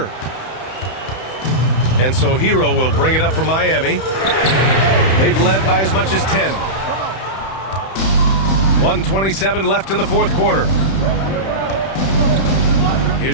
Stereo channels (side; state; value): right; late; 31 ms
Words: And so Hero will bring it up for Miami. They've led by as much as 10. 1:27 left in the fourth quarter.